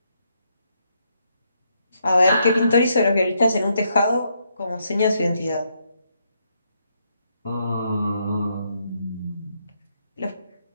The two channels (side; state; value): both; inverted; correlation -0.77